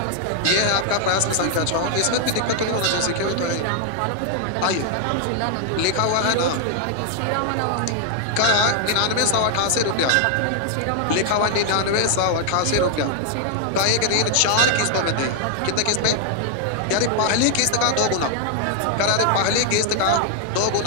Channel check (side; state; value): both; different; correlation 0.00